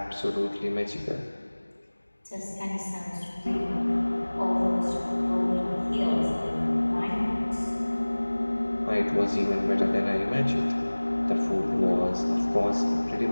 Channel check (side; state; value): both; inverted; correlation -1.00